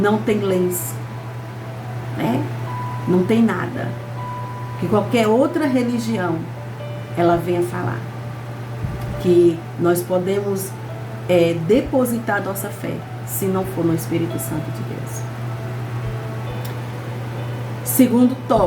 tem lenço, né? Não tem nada que qualquer outra religião ela venha falar que nós podemos depositar nossa fé, se não for no Espírito Santo de Deus. Segundo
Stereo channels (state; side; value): identical; both; correlation 1.00